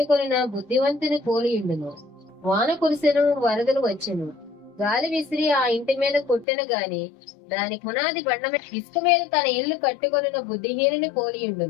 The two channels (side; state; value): right; drops out; at 6.5 s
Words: బుద్ధివంతుని పోలియుండును. వాన కురిసెను, వరదలు వచ్చెను, గాలి విసిరి ఆ ఇంటి మీద కొట్టెను గాని దాని పునాది బండ మీద ఇసుక మీద తన ఇల్లు కట్టుకొనిన బుద్ధిహీనుని